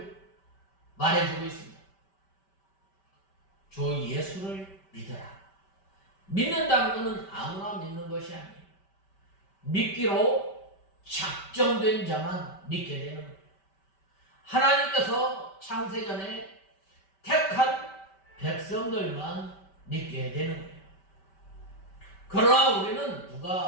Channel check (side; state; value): right; late; 5.1 ms